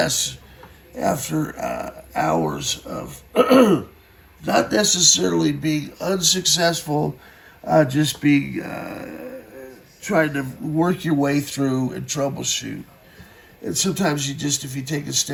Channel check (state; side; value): identical; both; correlation 1.00